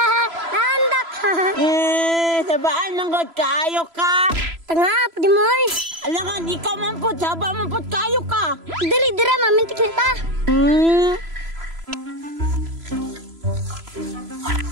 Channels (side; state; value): left; late; 3.0 ms